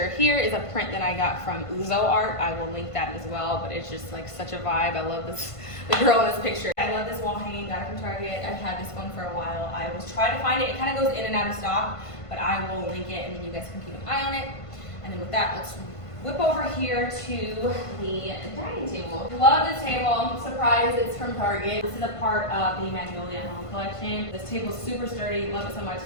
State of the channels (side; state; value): right; late; 1.5 ms